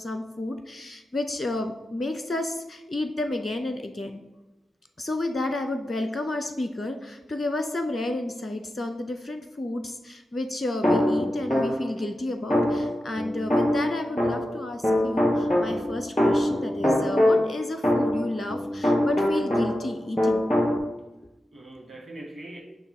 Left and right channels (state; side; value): normal; both; correlation 0.91